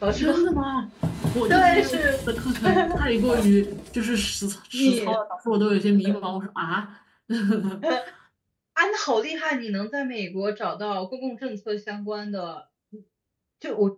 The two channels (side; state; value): both; identical; correlation 1.00